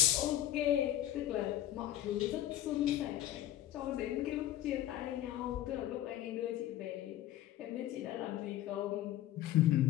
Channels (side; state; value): right; quieter; 12.9 dB